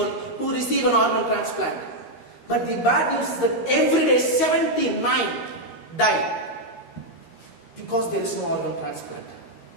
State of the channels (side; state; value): right; late; 13 ms